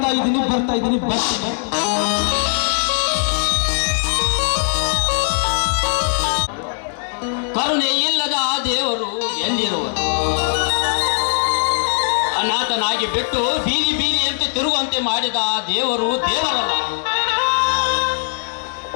ಇದ್ದೀನಿ. ಕರುಣೆ ಇಲ್ಲದ ಆ ದೇವರು ಎಲ್ಲಿರುವರು? ಅನಾಥನಾಗಿ ಬಿಟ್ಟು ಬೀದಿಯಂತೆ ತಿರುಗುವಂತೆ ಮಾಡಿದ ಆ ದೇವರು ದೇವರಲ್ಲ.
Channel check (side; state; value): right; silent; digital silence